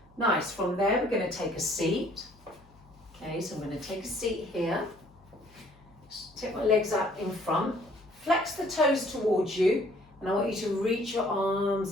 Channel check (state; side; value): noise; left; hum, 27 dB below the sound